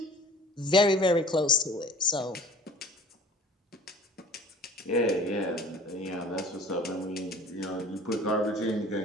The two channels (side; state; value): both; normal; correlation 0.46